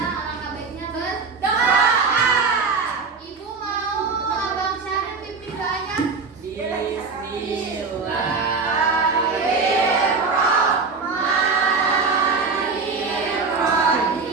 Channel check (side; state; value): left; quieter; 4.6 dB